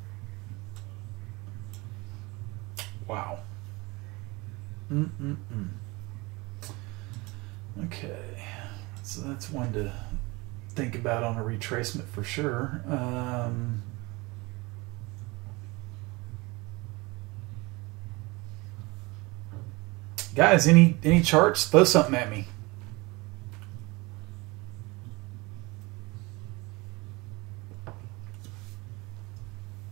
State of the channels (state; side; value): quieter; left; 24.4 dB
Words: Okay. So that's one to think about on a retracement for sure. Guys, any charts? Throw something at me.